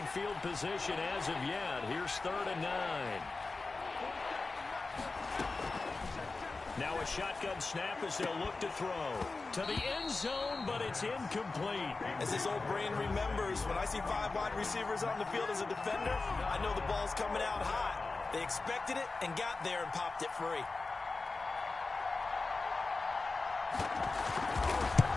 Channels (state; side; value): quieter; right; 3.7 dB